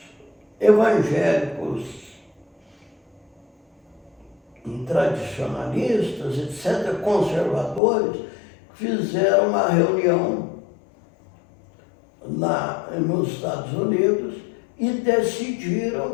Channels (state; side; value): drops out; right; at 7.8 s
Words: evangélicos tradicionalistas, etc., conservadores, fizeram uma reunião lá nos Estados Unidos e